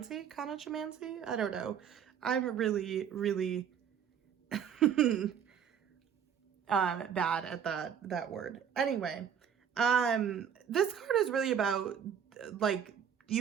I don't know. I'm really, really bad at that word. Anyway, this card is really about like,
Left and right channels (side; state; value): left; quieter; 8.3 dB